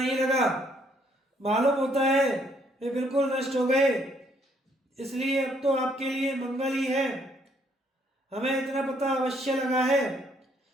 लगा। मालूम होता है वे बिल्कुल नष्ट हो गए। इसलिए अब तो आपके लिए मंगल ही है। हमें इतना पता अवश्य लगा है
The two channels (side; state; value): both; normal; correlation 0.68